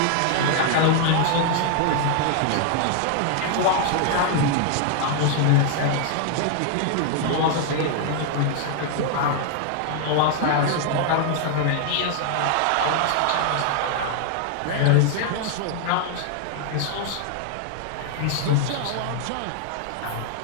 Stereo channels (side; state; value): both; different; correlation 0.00